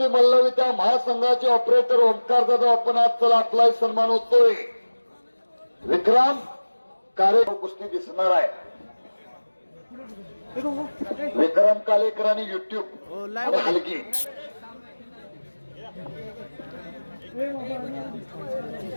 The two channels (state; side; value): inverted; both; correlation -1.00